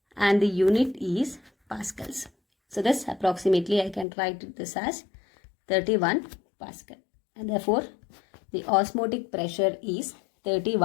and the unit is pascals. So this approximately I can write this as 31 pascal, and therefore the osmotic pressure is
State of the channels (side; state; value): right; drops out; at 4.0 s